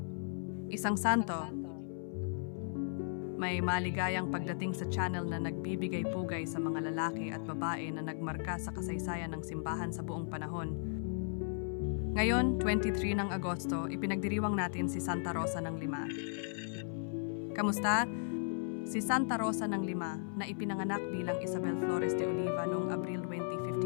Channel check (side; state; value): right; silent; 54 dB below the other